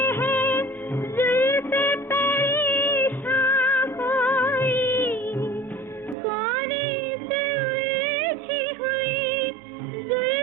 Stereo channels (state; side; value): drops out; left; at 6.2 s